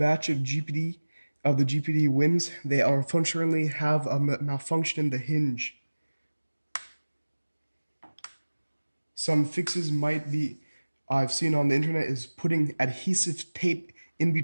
of the GPD WINs, they unfortunately have a malfunction in the hinge. Some fixes I've seen on the internet is putting adhesive tape in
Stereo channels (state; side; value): inverted; both; correlation -1.00